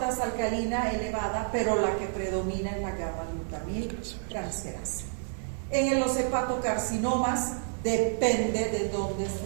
alcalina elevada, pero la que predomina es la gamma-glutamiltransferasa. En los hepatocarcinomas depende de dónde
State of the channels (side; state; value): left; silent; 57 dB below the other